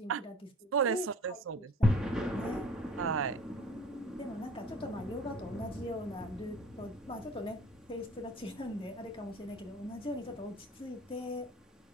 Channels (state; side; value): normal; both; correlation 0.47